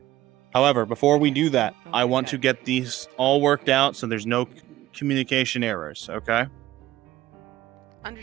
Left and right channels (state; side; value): quieter; left; 15.4 dB